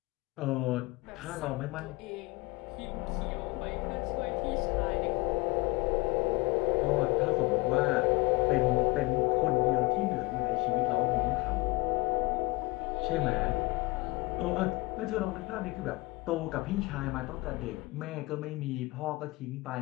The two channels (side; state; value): right; quieter; 23.3 dB